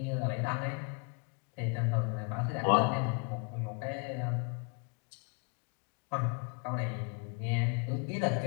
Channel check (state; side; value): quieter; right; 34.9 dB